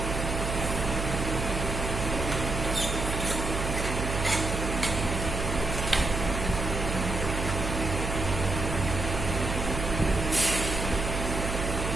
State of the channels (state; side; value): noise; right; hum, 3 dB below the sound